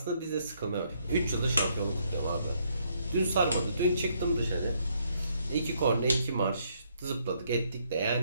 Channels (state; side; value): inverted; both; correlation -0.71